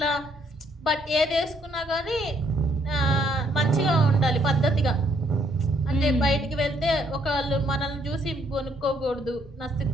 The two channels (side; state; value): both; normal; correlation 0.69